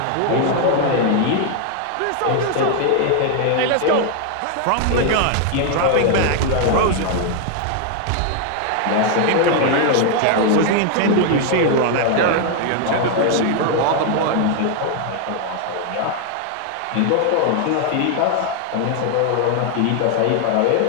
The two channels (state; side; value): different; both; correlation 0.00